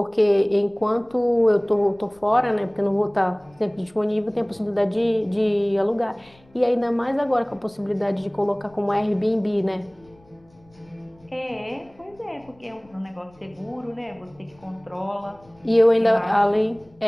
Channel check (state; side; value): noise; left; rumble, 29 dB below the sound